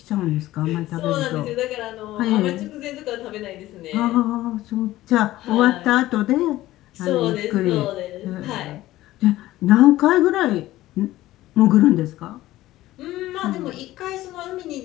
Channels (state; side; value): quieter; right; 15.9 dB